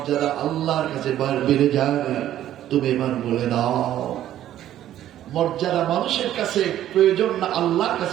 আল্লাহর কাছে বেড়ে যায়, তুমি এবার বলে দাও। মর্যাদা মানুষের কাছে প্রয়োজন না আল্লাহর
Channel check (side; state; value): left; quieter; 12.2 dB